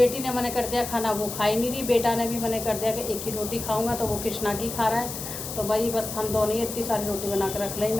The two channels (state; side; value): noise; left; hiss, 7 dB below the sound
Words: ने मना कर दिया खाना, वो खा ही नहीं रही। बेटा ने भी मना कर दिया कि एक ही रोटी खाऊंगा, तो वो कृष्णा की खा रहा है। तो भाई बस हम दोनों ही इतनी सारी रोटी बना कर रख ली।